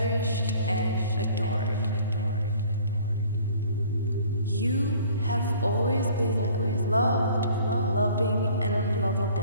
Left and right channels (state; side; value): inverted; both; correlation -0.52